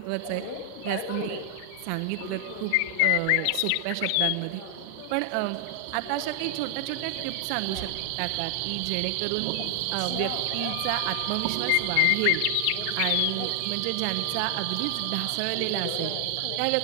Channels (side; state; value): both; different; correlation 0.00